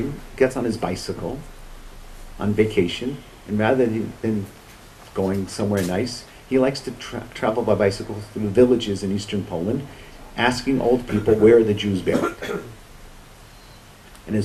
gets on his bicycle on vacation, and rather than going somewhere nice, he likes to travel by bicycle through villages in eastern Poland, asking old people where are the Jews buried. And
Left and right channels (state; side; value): identical; both; correlation 1.00